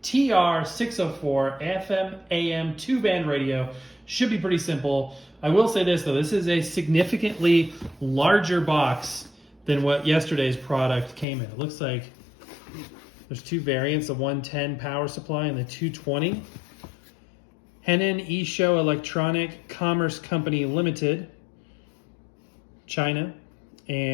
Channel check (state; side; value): drops out; right; at 11.2 s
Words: TR604 FM AM 2-band radio. Should be pretty simple. I will say this though, this is a significantly larger box than what yesterday's product came in. It looks like there's two variants, the 110 power supply and the 220. Henan Esho Electronic Commerce Company Limited, China,